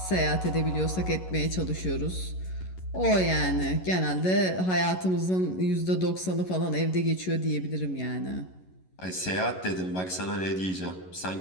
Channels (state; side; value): late; right; 11 ms